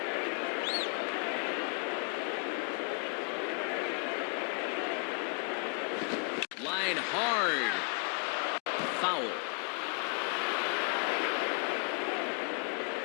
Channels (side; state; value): right; quieter; 36.8 dB